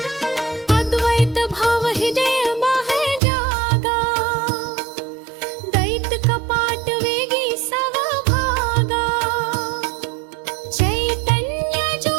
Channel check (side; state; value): left; drops out; at 3.2 s